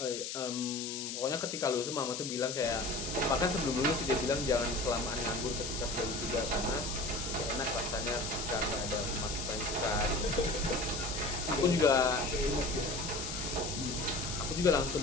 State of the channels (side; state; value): left; noise; hiss, 5 dB below the sound